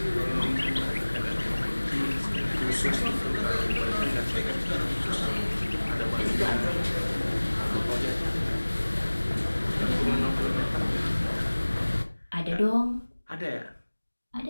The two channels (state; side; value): inverted; both; correlation -1.00